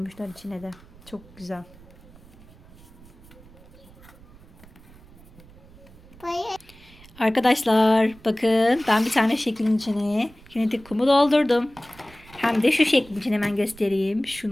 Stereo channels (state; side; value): noise; right; rumble, 23 dB below the sound